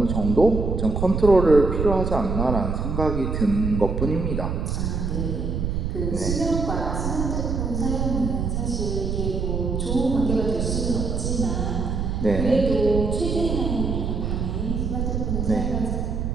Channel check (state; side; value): noise; right; rumble, 1 dB below the sound